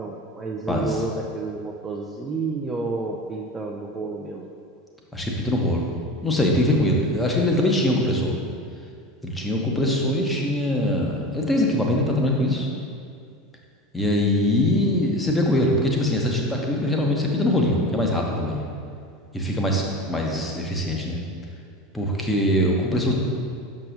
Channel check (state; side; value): normal; both; correlation 0.32